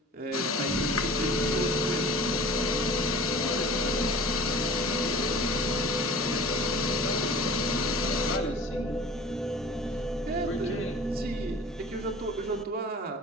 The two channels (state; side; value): normal; both; correlation 0.42